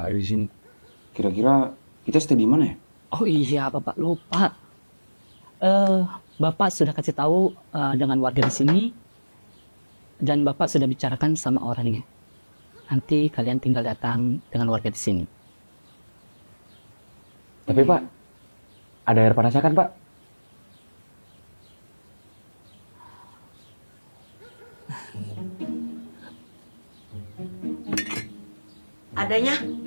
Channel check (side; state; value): both; inverted; correlation -1.00